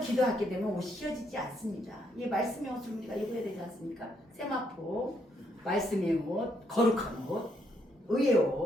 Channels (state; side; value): normal; both; correlation 0.74